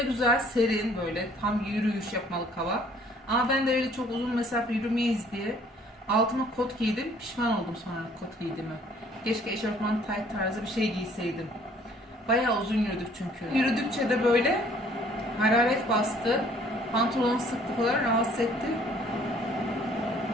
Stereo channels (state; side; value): normal; both; correlation 0.58